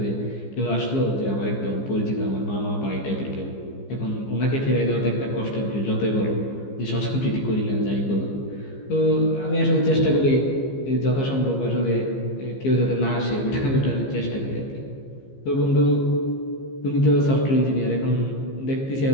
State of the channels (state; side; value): late; right; 15 ms